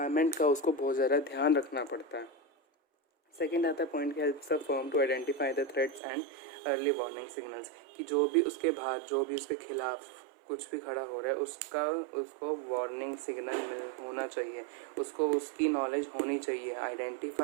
का उसको बहुत ज़्यादा ध्यान रखना पड़ता है। सेकेंड आता है point, helps the firm to identify the threats and early warning signals, कि जो भी उसके बाहर, जो भी उसके खिलाफ कुछ भी खड़ा हो रहा है उसको वार्निंग सिग्नल होना चाहिए, उसको उसकी नॉलेज होनी चाहिए।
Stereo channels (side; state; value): left; drops out; at 6.0 s